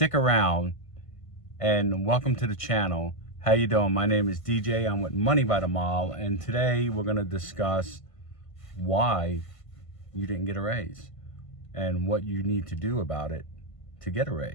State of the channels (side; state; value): right; late; 1.5 ms